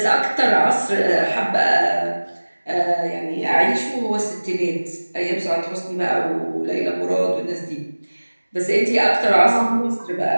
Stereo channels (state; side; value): inverted; both; correlation -1.00